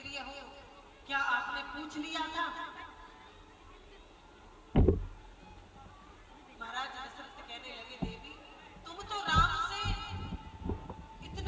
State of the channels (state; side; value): identical; both; correlation 1.00